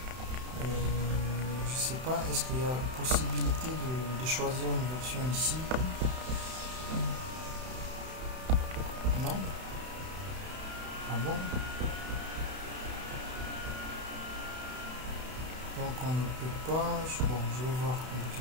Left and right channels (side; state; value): left; late; 31 ms